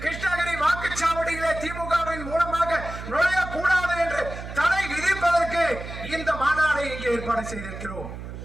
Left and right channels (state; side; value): noise; right; hum, 10 dB below the sound